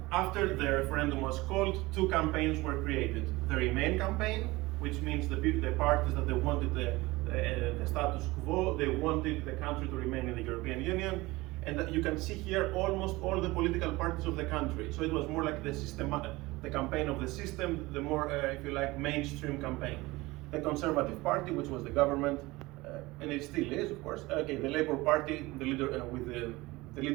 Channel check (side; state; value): left; quieter; 21.0 dB